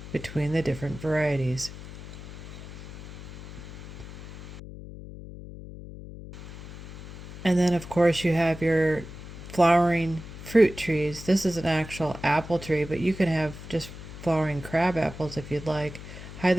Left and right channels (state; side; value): noise; left; hum, 13 dB below the sound